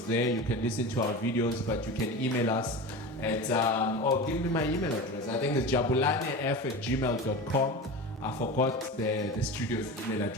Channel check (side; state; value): both; normal; correlation 0.28